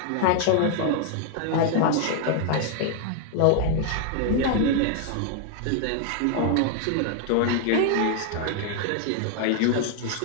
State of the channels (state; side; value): different; both; correlation 0.00